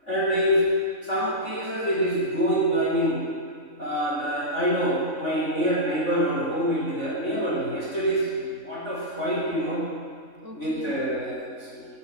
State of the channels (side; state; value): right; late; 3.5 ms